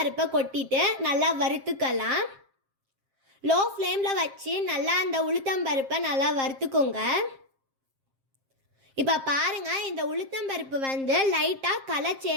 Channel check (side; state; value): left; late; 7.5 ms